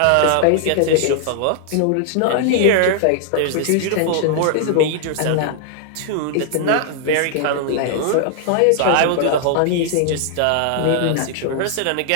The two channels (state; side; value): different; both; correlation 0.00